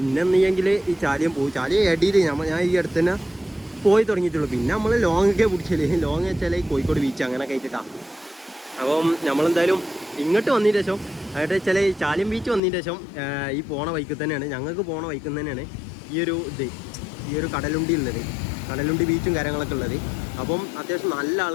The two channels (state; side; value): drops out; right; at 12.6 s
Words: എന്തെങ്കിൽ ഈ ചാലിയം പോകും. ചാലിയം ഇടയിൽ ഞാൻ ഈ അടുത്ത് തന്നെ പോയി തുടങ്ങിയിട്ടുള്ളൂ. പിന്നെ നമ്മൾ ലോങ്ങൊക്കെ പിടിച്ചല്ലേ. ലോങ് വെച്ചാൽ ഈ കോഴിക്കോട് ബീച്ച് അങ്ങനെ കഴിച്ചിട്ടാണ്. അപ്പം നമ്മളെന്തായാലും ഇങ്ങോട്ട് വന്നതിന് ശേഷം അതായത് വെച്ചാൽ ഈ ചാലിയം ബീച്ച് വന്നതിന് ശേഷം ഈ പോണ വൈക്കിൽ തന്നെയാണ് ഞങ്ങൾക്ക് പോണ വൈക്കിൽ തന്നെയാണ് ഈ ഒരു കടലുണ്ടി ഉള്ളത്. കടലുണ്ടി ബീച്ചും കാര്യങ്ങളൊക്കെ ഉള്ളത്. അപ്പം അത്യാവശ്യം നല്ല